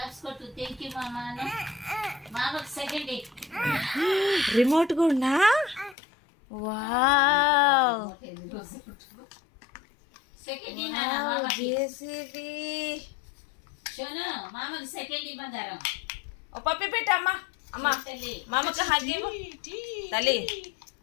కొట్టు. థ్యాంక్ యూ మామా. మామకు సెకండ్ రిమోట్ కూడా. Wow second JCB. షోను మామకు సెకండ్ బంగారం. ఓ పప్పి పెట్టమ్మా. అమ్మా మామకు హగ్ ఇవ్వు తల్లి.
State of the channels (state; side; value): drops out; right; at 6.0 s